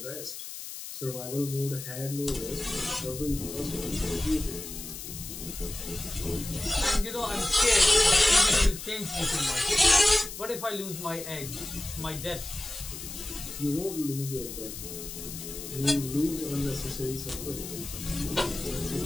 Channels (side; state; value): left; noise; hiss, 10 dB below the sound